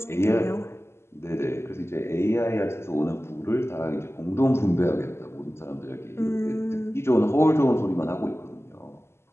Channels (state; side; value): late; right; 0.12 ms